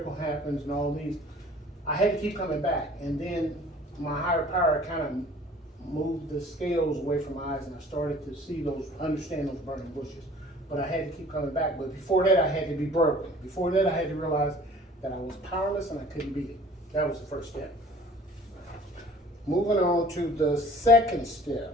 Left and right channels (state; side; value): normal; both; correlation 0.49